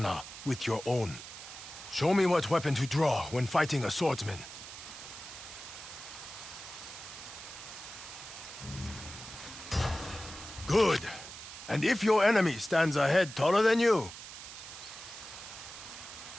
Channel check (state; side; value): noise; right; hiss, 12 dB below the sound